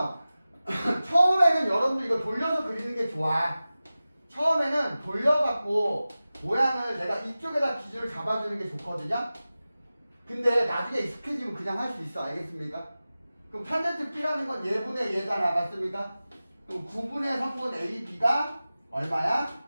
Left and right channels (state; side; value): inverted; both; correlation -0.96